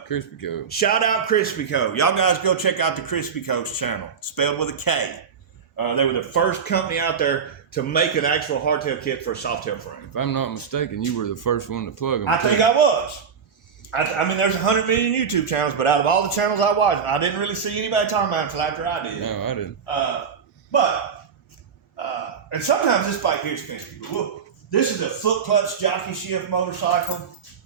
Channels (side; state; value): left; quieter; 6.6 dB